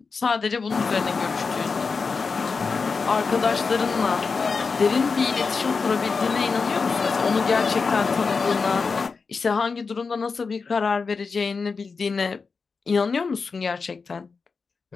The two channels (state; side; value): quieter; right; 4.8 dB